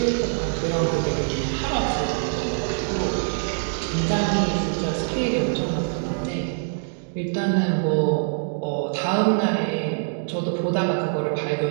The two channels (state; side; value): silent; left; digital silence